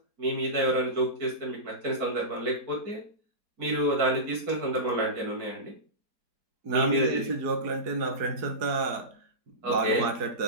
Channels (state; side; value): late; left; 4.7 ms